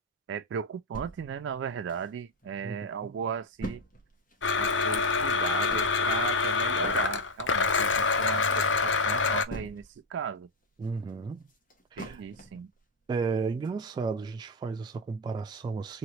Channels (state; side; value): normal; both; correlation 0.06